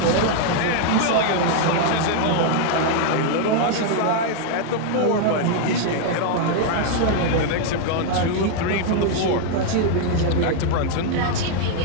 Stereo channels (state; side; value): different; both; correlation 0.00